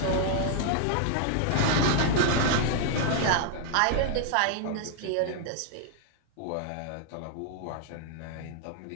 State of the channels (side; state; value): both; different; correlation -0.01